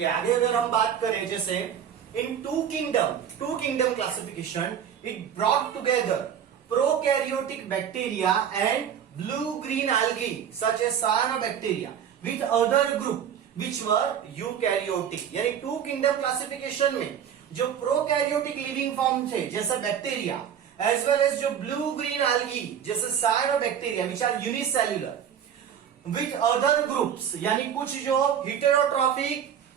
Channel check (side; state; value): left; quieter; 8.7 dB